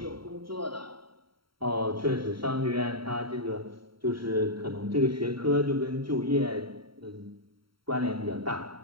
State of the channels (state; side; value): late; left; 0.74 ms